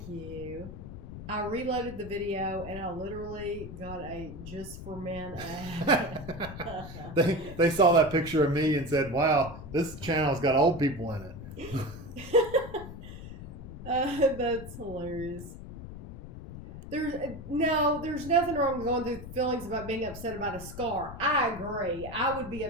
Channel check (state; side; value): noise; left; rumble, 12 dB below the sound